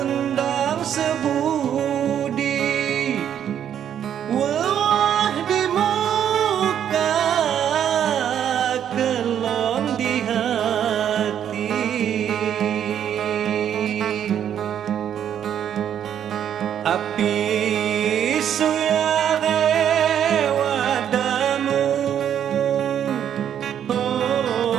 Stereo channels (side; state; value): left; quieter; 9.5 dB